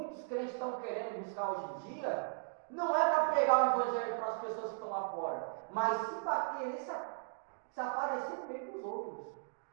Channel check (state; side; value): silent; left; digital silence